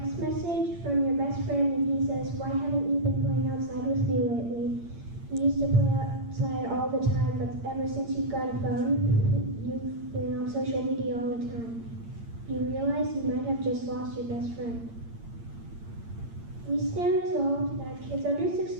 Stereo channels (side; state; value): left; late; 8.7 ms